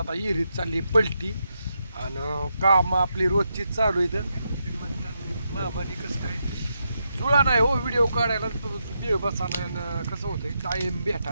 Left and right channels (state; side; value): inverted; both; correlation -0.83